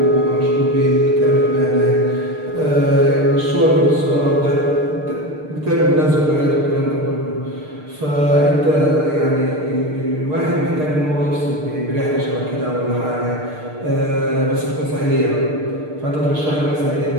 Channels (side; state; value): left; late; 6.6 ms